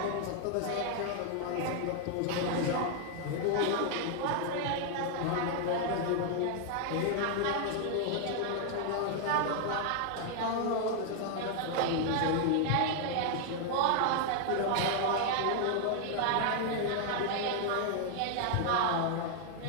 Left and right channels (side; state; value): both; different; correlation 0.00